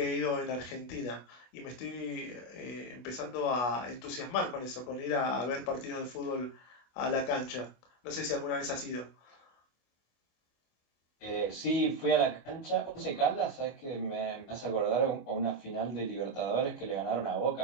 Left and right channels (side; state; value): right; late; 25 ms